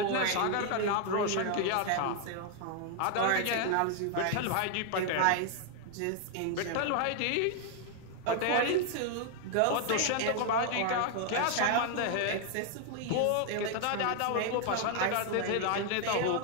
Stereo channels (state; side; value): different; both; correlation 0.00